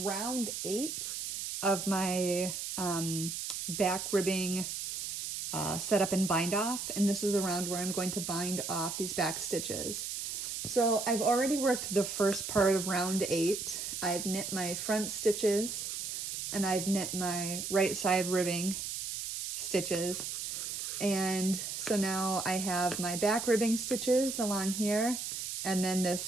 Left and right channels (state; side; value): noise; right; hiss, 5 dB below the sound